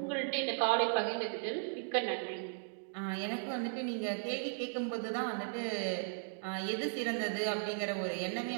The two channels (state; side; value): silent; left; digital silence